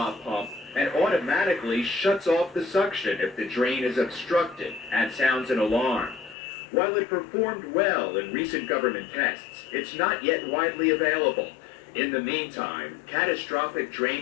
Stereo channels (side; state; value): right; drops out; at 6.4 s